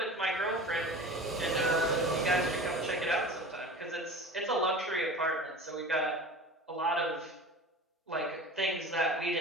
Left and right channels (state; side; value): normal; both; correlation 0.36